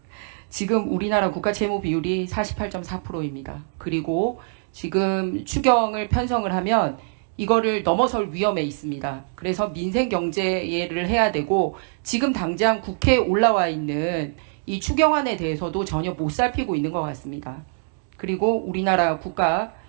지금 우리나라 국가 채무 비율이 48.4%입니다. 그리고 지금 추경을 편성을 하면 이거를 넘어설 위험에 있습니다. 그래서 민생 경제를 해야 되고 지금 당장 국회에 올라와 있는 이 추경안에 대해서도 전혀 못 살피고 있는 것 같습니다. 그리고 우리나라 국가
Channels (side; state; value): left; silent; digital silence